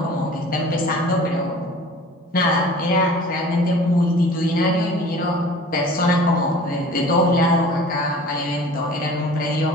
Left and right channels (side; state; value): both; normal; correlation 0.45